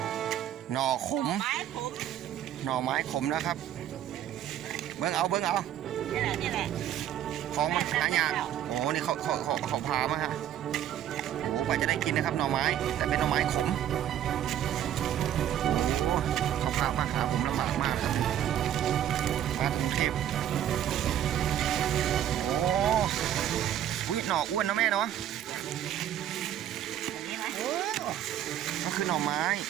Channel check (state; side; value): quieter; left; 11.0 dB